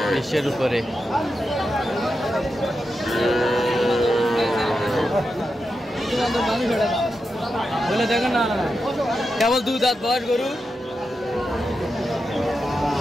20-এর উপরে। বলে দেখেন না, কেবল 2 দাঁত বয়স গরু।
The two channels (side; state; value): both; normal; correlation 0.88